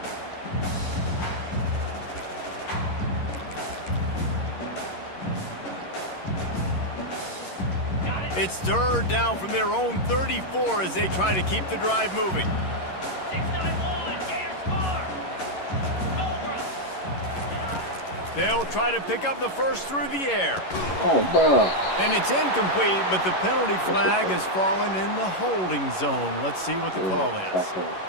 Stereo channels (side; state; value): right; late; 11 ms